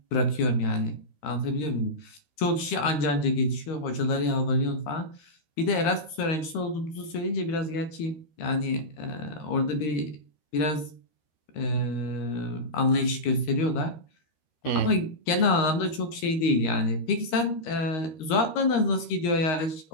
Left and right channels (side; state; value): right; late; 13 ms